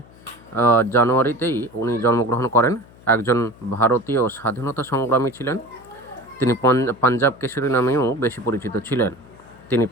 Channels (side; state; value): left; noise; hum, 24 dB below the sound